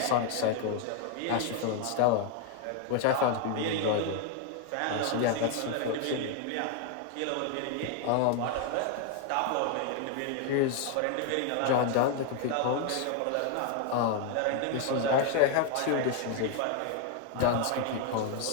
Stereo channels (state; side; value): different; both; correlation 0.00